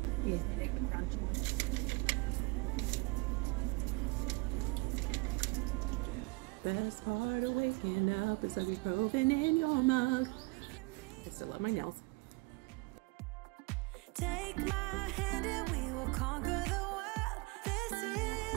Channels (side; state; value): left; quieter; 26.9 dB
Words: Best part of waking up is ibuprofen in your mug. I still love my nails. Take my hand and we will conquer the world. This